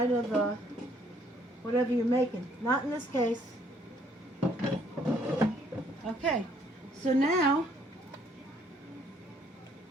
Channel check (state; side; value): normal; both; correlation 0.65